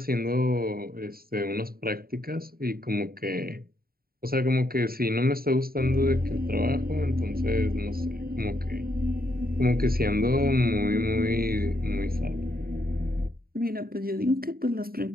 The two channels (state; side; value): late; left; 0.43 ms